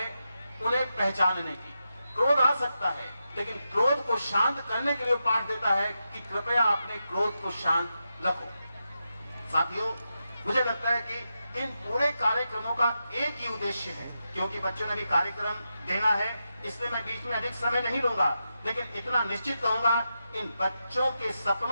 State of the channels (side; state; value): both; inverted; correlation -0.88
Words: उन्हें पहचानने की। क्रोध आ सकता है, लेकिन क्रोध को शांत करने के लिए पाठ देता है कि कृपया अपने क्रोध को शांत रखो। साथियों, मुझे लगता है कि इन पूरे कार्यक्रमों का एक ही उद्देश्य है, क्योंकि बच्चों ने भी कार्यक्रम देना है, इसलिए मैं बीच में अधिक समय नहीं लूंगा, लेकिन इतना निश्चित कहूंगा, इन बच्चों के